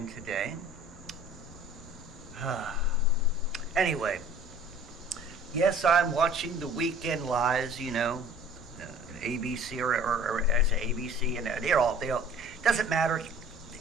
today. Anyway, yes, I'm watching the Weekend Lies, ABC or I say ABC, and they all, doesn't matter.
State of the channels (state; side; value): normal; both; correlation 0.49